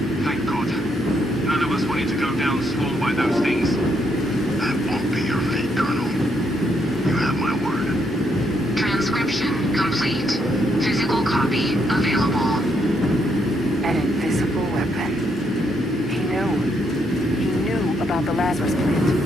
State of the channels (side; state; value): both; normal; correlation 0.75